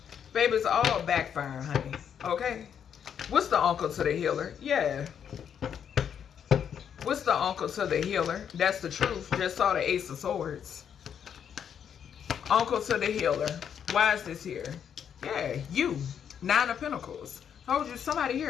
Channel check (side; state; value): right; quieter; 8.2 dB